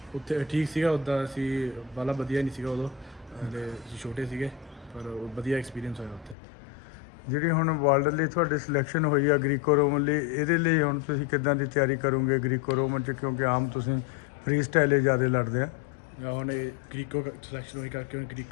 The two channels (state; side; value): drops out; right; at 6.4 s